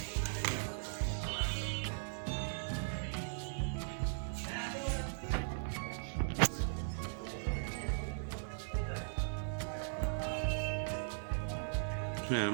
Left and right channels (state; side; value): silent; left; digital silence